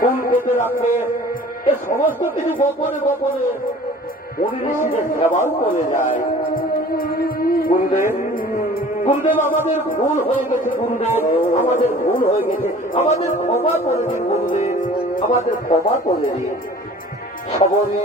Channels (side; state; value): both; normal; correlation 0.47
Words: পেতে রাখে, এ সমস্ত কিছু গোপনে গোপনে মুনি ঋষিদের সেবাও করে যায়। গুরুদেব, গুরুদেব, আমাদের ভুল হয়ে গেছে গুরুদেব, আমাদের ভুল হয়ে গেছে, আমাদের ক্ষমা করে দিন গুরুদেব, আমাদের ক্ষমা করে দিন।